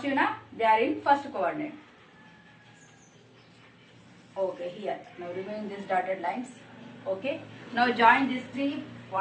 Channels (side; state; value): both; identical; correlation 1.00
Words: now. They are in first coordinate. Okay, here. Now remove these dotted lines. Okay. Now join these 3